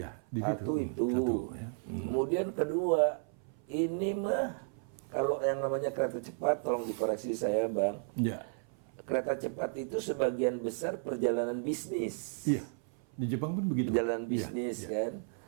Satu itu. Kemudian kedua, ini mah kalau yang namanya kereta cepat, tolong dikoreksi saya Bang. Kereta cepat itu sebagian besar perjalanan bisnis. Iya, di Jepang pun begitu. Perjalanan bisnis kan.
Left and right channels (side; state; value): left; silent; 55 dB below the other